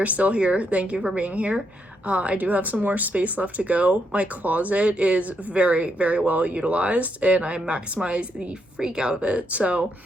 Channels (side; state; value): both; normal; correlation 0.78